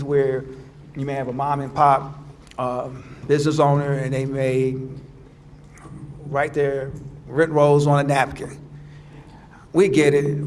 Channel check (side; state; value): both; identical; correlation 1.00